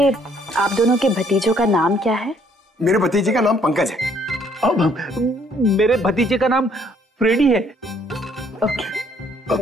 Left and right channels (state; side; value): normal; both; correlation 0.65